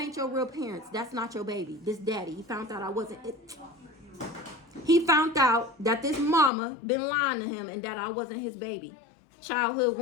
your real parents. That's not your baby. This daddy. He found out I wasn't it. He found out that this mama been lying to him and that I wasn't his baby. Childhood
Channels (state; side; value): drops out; right; at 6.5 s